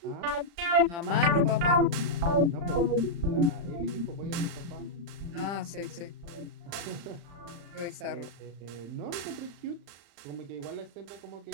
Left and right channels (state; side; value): late; left; 35 ms